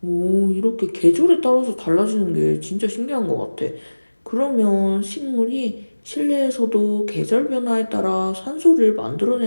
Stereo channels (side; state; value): both; inverted; correlation -1.00